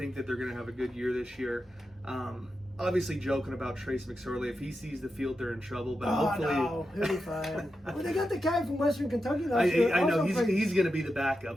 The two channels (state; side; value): normal; both; correlation 0.89